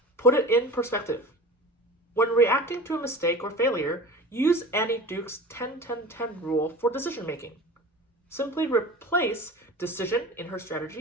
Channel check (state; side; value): normal; both; correlation 0.37